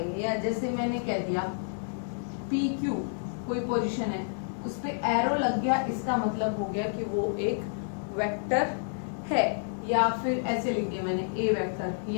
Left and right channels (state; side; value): silent; right; digital silence